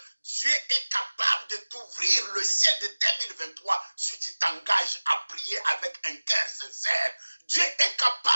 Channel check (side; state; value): both; inverted; correlation -1.00